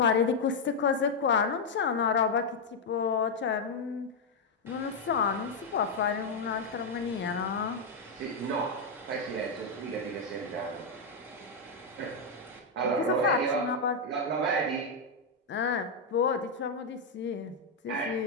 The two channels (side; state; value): right; quieter; 3.2 dB